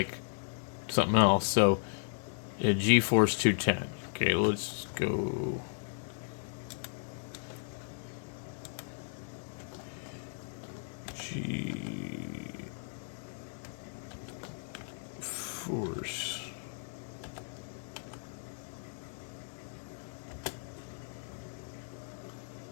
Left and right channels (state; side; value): silent; right; digital silence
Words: something else. So a GeForce 210. Okay, let's go. GeForce.